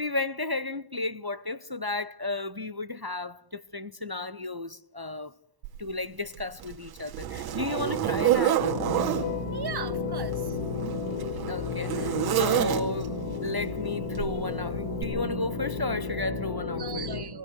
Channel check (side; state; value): left; late; 1.1 ms